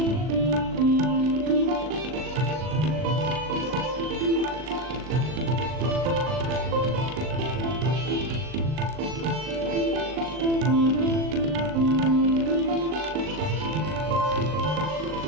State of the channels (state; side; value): late; left; 39 ms